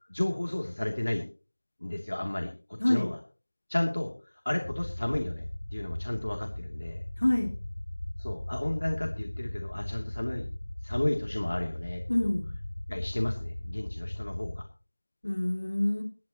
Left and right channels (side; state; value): both; inverted; correlation -1.00